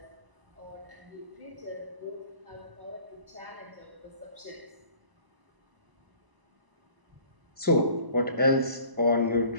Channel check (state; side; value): late; left; 1.0 ms